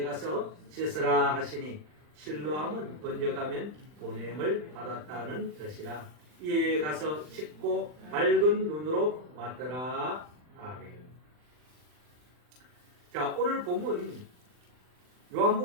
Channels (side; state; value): left; late; 40 ms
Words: 가서 씻으라 하시니 실로암은 번역하면 보냄을 받았다는 뜻이라. 이에 가서 씻고 밝은 눈으로 왔더라. 아멘. 자, 오늘 본문